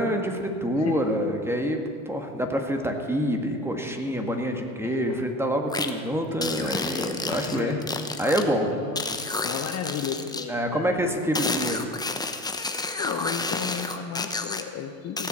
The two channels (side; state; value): both; normal; correlation 0.41